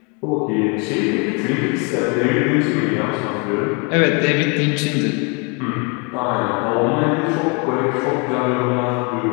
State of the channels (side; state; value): right; quieter; 33.5 dB